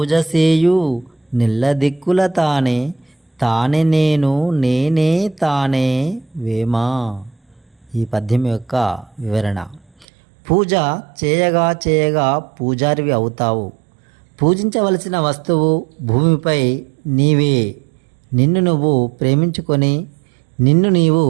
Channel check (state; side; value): drops out; left; at 10.1 s